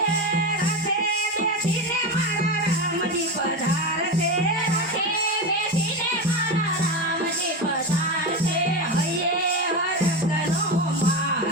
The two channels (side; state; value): both; normal; correlation 0.18